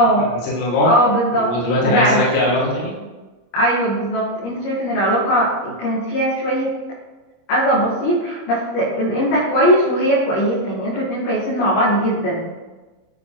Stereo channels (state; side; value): late; right; 26 ms